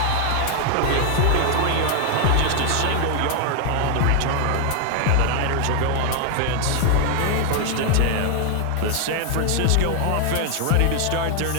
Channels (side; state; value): both; different; correlation 0.00